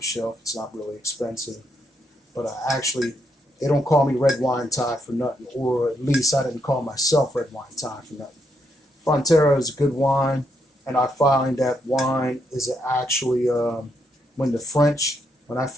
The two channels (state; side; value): normal; both; correlation 0.78